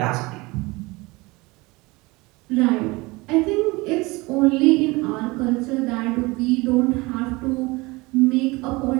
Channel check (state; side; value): quieter; left; 23.3 dB